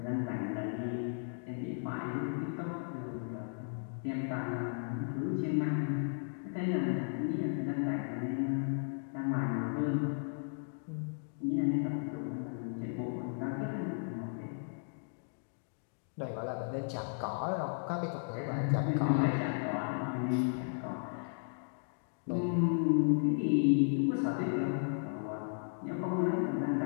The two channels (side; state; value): right; silent; digital silence